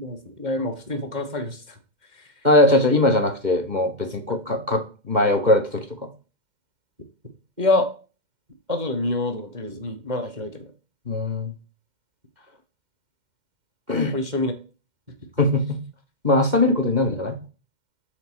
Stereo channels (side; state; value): left; late; 2.1 ms